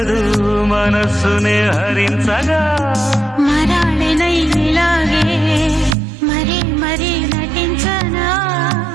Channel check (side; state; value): left; drops out; at 6.0 s